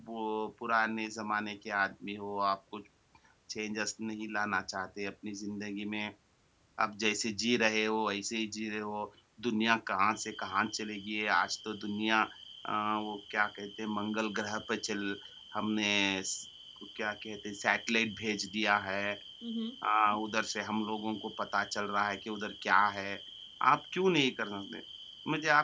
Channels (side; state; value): both; identical; correlation 1.00